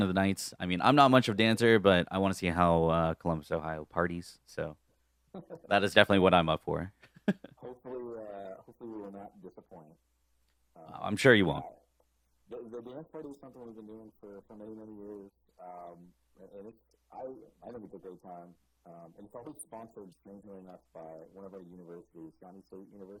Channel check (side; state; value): both; identical; correlation 1.00